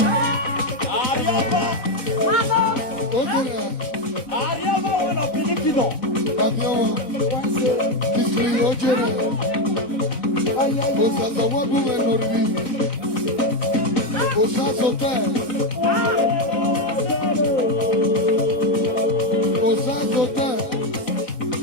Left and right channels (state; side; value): late; right; 4.0 ms